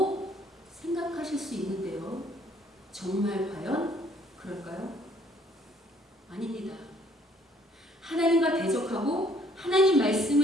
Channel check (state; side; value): normal; both; correlation 0.62